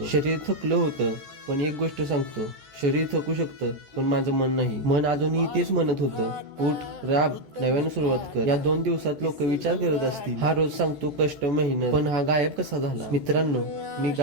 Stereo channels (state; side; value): late; left; 14 ms